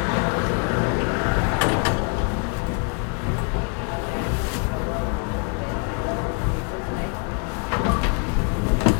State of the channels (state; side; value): quieter; right; 39.3 dB